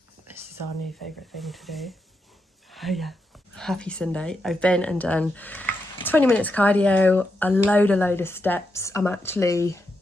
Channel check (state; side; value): normal; both; correlation 0.84